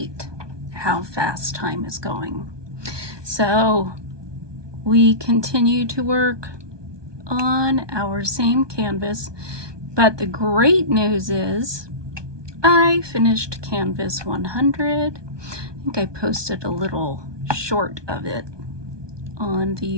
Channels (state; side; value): late; left; 1.2 ms